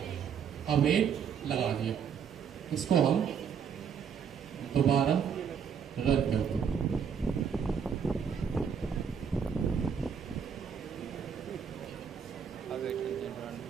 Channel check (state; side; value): quieter; left; 7.3 dB